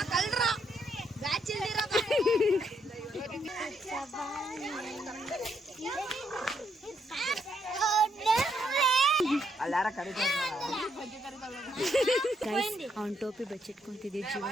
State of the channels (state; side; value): normal; both; correlation 0.75